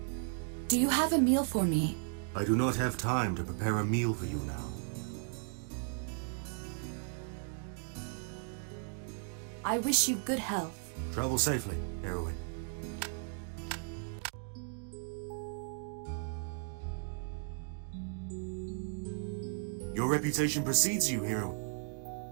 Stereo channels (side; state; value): left; silent; 54 dB below the other